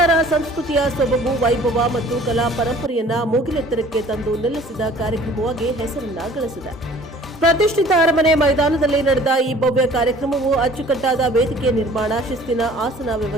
ಸಂಸ್ಕೃತಿಯ ಸೊಬಗು, ವೈಭವ ಮತ್ತು ಕಲಾ ಪರಂಪರೆಯನ್ನ ಮೂಗಿಲೆತ್ತರಕ್ಕೆ ತಂದು ನಿಲ್ಲಿಸಿದ ಕಾರ್ಯಕ್ರಮವಾಗಿ ಹೆಸರನ್ನ ಗಳಿಸಿದೆ. ಪ್ರತಿಷ್ಠಿತ ಅರಮನೆ ಮೈದಾನದಲ್ಲಿ ನಡೆದ ಈ ಭವ್ಯ ಕಾರ್ಯಕ್ರಮವು ಅಚ್ಚುಕಟ್ಟಾದ ವೇದಿಕೆ ನಿರ್ಮಾಣ, ಶಿಸ್ತಿನ ಆಸನ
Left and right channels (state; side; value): normal; both; correlation 0.50